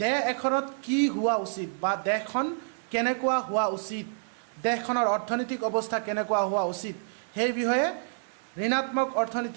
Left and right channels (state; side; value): silent; left; digital silence